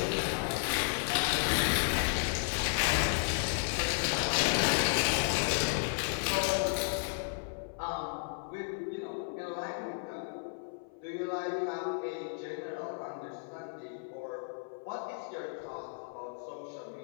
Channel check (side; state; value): right; silent; 55 dB below the other